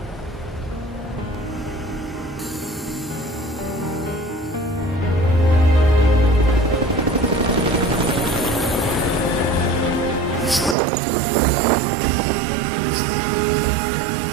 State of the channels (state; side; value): drops out; left; at 10.8 s